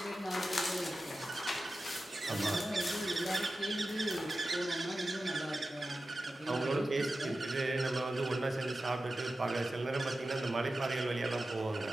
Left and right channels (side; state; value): both; normal; correlation 0.93